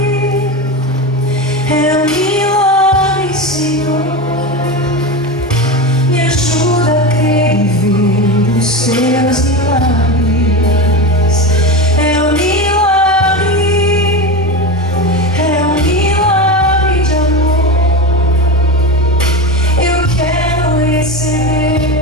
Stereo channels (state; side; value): normal; both; correlation 0.22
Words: é um milagre, Senhor. Me ajuda a crer e ver os seus milagres. É um milagre, é um milagre de amor. Eu quero